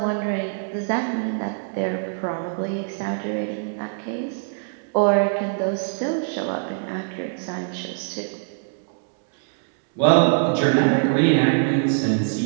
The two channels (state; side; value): silent; left; digital silence